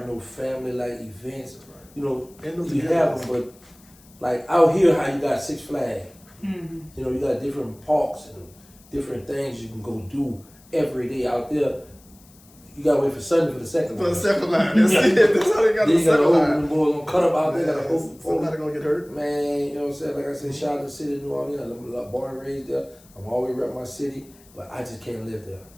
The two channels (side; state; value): left; noise; hiss, 27 dB below the sound